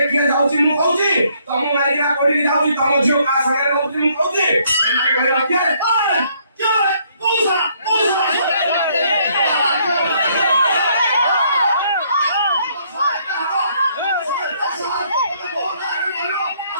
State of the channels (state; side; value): inverted; both; correlation -0.68